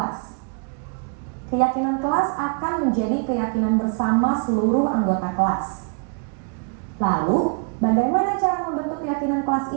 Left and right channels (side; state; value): left; quieter; 37.5 dB